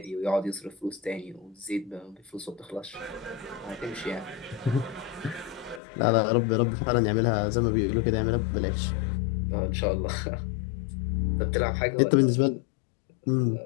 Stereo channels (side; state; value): right; drops out; at 5.8 s